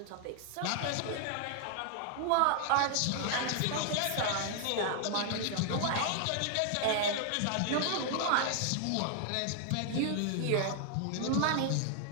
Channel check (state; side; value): different; both; correlation 0.00